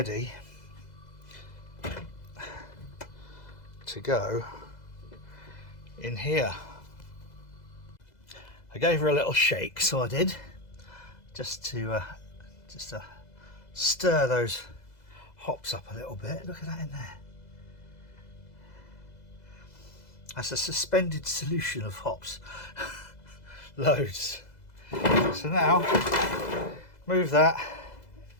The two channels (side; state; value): right; late; 2.0 ms